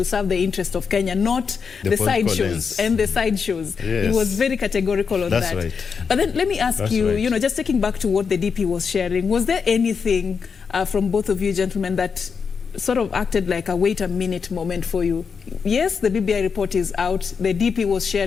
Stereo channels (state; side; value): quieter; right; 5.9 dB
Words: serve the interest of Kenya, not the sideshows and the sideshows. Yes. He was very categorical on that. Right. But then let me ask you, just taking back to what the DP was sharing, was there anything from both of you gentlemen that sort of acted like a wait a minute moment for you? Yes, the BBI report is out. The DP was